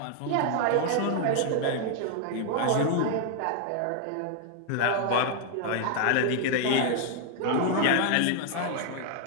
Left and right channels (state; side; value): different; both; correlation 0.00